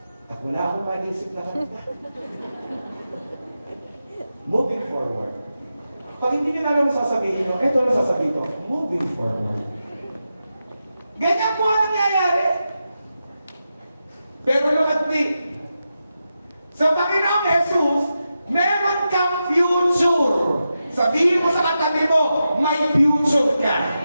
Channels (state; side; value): inverted; both; correlation -0.89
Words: At wala akong maisip na kanta. Moving forward. Pag hindi niyo na alam sasabihin nyo, eto na sasabihin ko, moving forward. Ganyan po ang nangyayari. Pero look at me. Sa Panginoong Jesus, meron kang future. Sabihin mo sa katabi mo, may future